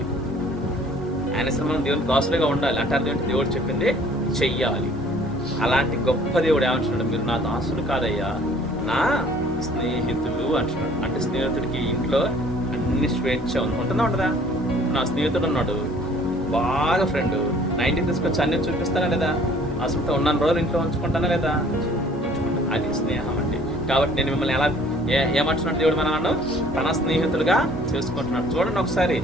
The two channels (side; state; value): both; normal; correlation 0.55